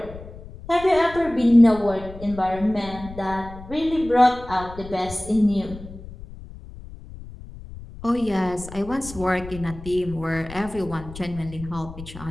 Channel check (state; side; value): noise; left; rumble, 15 dB below the sound